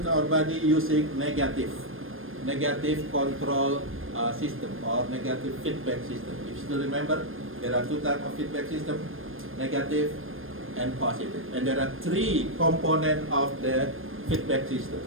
our body using negative control system or negative feedback system. If you still remember, there are two types of feedback system, negative and positive. And there are three components of the feedback system.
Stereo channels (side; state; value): left; late; 0.60 ms